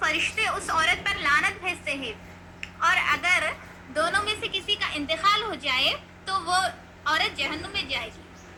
اس عورت پر لعنت بھیجتے ہیں. اور اگر دونوں میں سے کسی کا انتقال ہو جائے تو وہ عورت جہنم میں جائے گی.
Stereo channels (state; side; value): identical; both; correlation 1.00